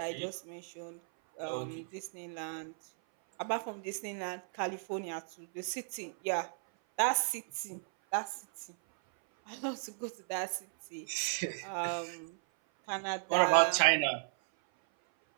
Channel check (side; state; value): left; silent; 54 dB below the other